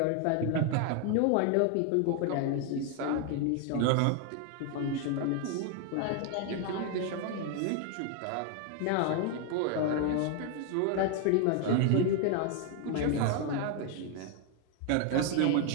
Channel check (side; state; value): both; different; correlation 0.01